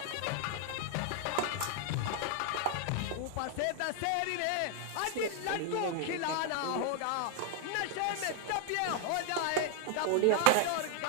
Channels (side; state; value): both; different; correlation 0.00